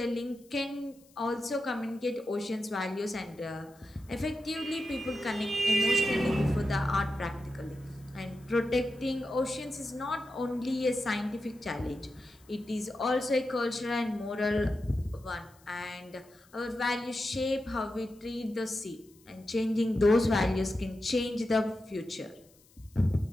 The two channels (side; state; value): left; noise; hiss, 29 dB below the sound